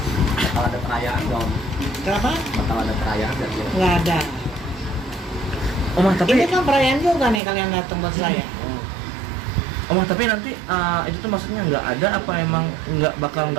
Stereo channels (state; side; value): drops out; left; at 7.4 s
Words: Bakal ada perayaan dong. Kenapa? Bakal ada perayaan dan Nggak ada. Oma tapi Ini kan perayaan juga nih kalian datang buat saya. Oma tapi nanti itu tuh maksudnya nggak ada apa emang